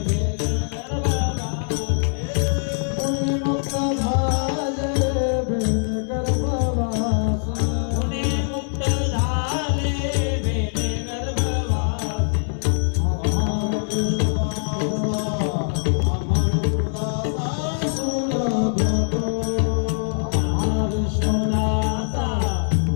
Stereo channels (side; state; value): right; silent; digital silence